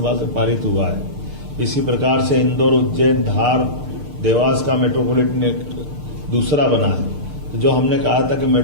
से पारित हुआ है, इसी प्रकार से इंदौर, उज्जैन, धार, देवास का मेट्रोपॉलिटन एक्ट दूसरा बना है। तो जो हमने कहा था कि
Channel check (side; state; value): left; late; 6.6 ms